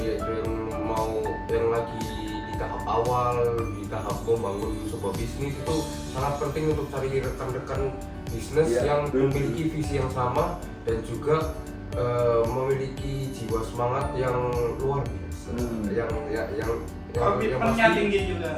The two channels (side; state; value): both; identical; correlation 1.00